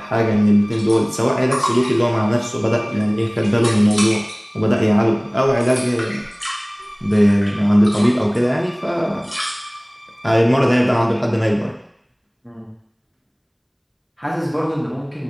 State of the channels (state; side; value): identical; both; correlation 1.00